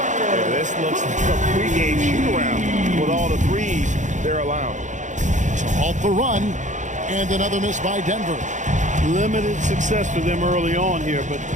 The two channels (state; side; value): late; left; 0.35 ms